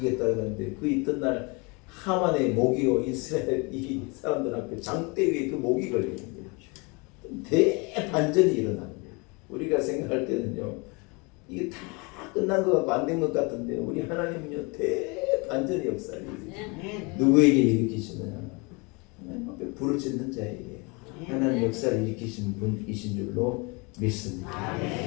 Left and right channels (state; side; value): quieter; right; 29.2 dB